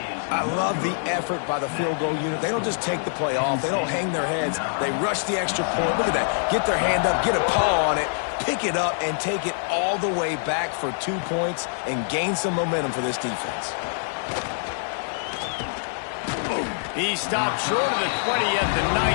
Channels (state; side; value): silent; right; digital silence